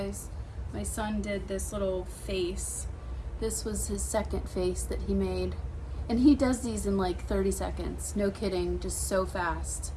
my son did this little face. This was his second face that he made. And he does these in like 30 seconds, no kidding, just so fast.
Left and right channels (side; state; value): both; identical; correlation 1.00